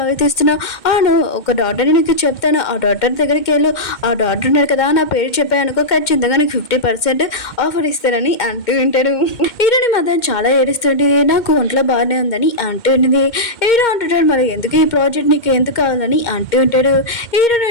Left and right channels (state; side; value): late; right; 2.1 ms